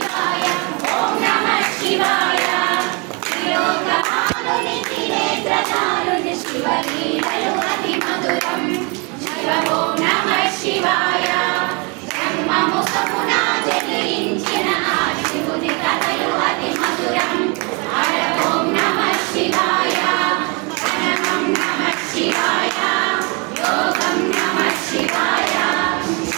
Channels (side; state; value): left; quieter; 31.2 dB